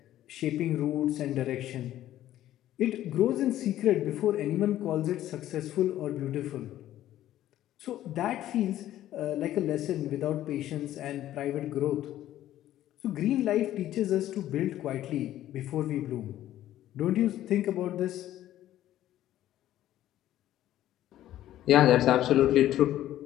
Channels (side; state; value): right; quieter; 13.1 dB